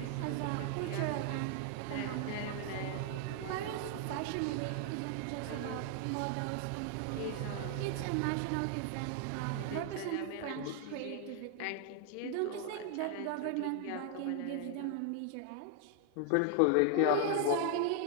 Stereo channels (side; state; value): both; different; correlation 0.00